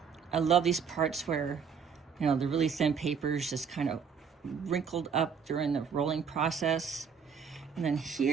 I love these parts where, you know, the really thin papers just kind of wrinkled up during the rolling process. And then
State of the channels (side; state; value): left; quieter; 6.5 dB